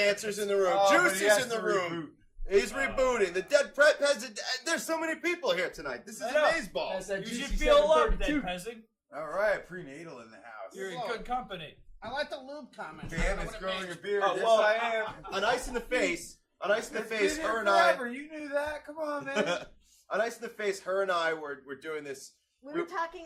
in the room. Oh, but he Juicy's has in the to room. He's rebooting. The dead peasant. There's so many people here tonight. This is amazeballs. As that You juicy should feel loved, 732. dead peasant. All right, prenatal in the house. You're in good company. I like the lube comment. Damn, it's growing a beard. Oh, Yes, well, I am. On Ice in the Face. On Ice in the It's Face, been her here and I. forever. You knew that. Come on, man. On Ice in the Face, her and I were doing this. We were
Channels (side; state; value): both; identical; correlation 1.00